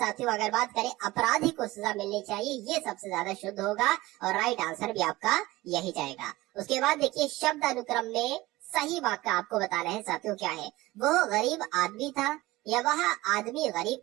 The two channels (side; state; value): left; quieter; 19.1 dB